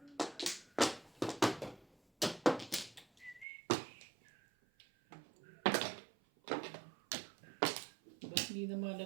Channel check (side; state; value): left; drops out; at 3.5 s